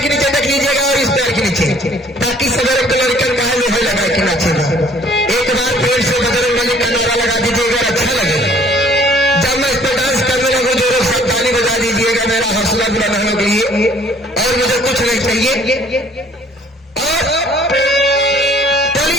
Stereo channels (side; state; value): both; normal; correlation 0.57